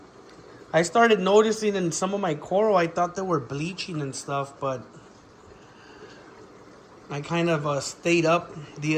I started noticing in some of my coral, I thought they were bleaching and stuff, but I kind of stayed up the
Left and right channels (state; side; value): identical; both; correlation 1.00